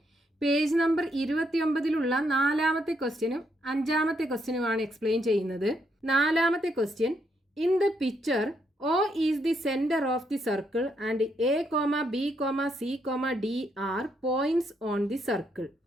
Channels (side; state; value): both; normal; correlation 0.76